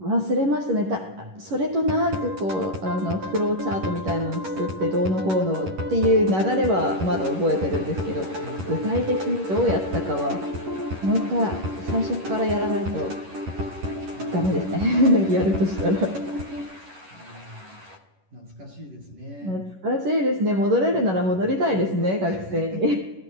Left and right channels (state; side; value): late; left; 11 ms